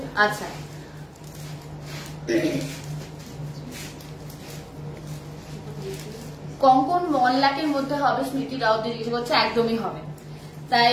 আচ্ছা, কঙ্কন 1 লাখের মধ্যে হবে? স্মৃতি রাউত জিজ্ঞেস করছে, একদমই হবে, তাই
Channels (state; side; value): identical; both; correlation 1.00